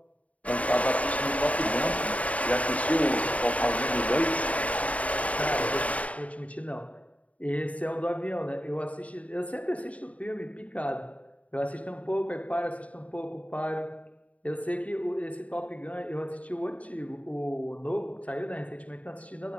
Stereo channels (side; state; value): right; late; 0.068 ms